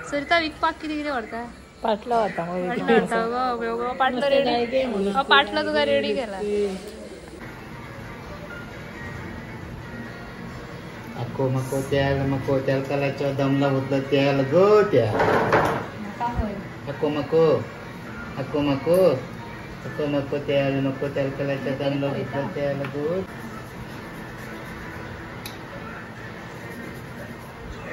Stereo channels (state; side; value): identical; both; correlation 1.00